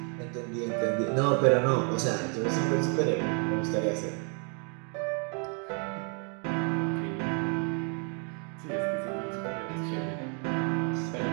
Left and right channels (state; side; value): quieter; left; 39.3 dB